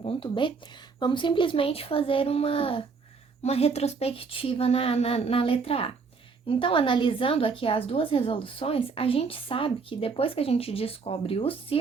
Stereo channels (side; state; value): left; quieter; 5.0 dB